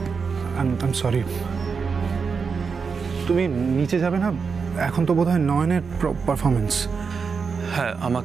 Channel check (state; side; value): quieter; left; 5.5 dB